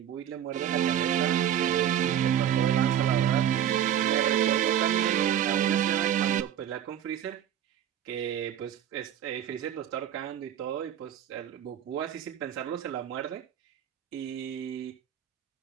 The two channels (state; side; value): quieter; left; 10.2 dB